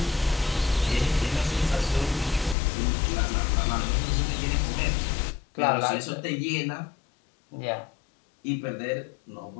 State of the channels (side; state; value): right; drops out; at 2.6 s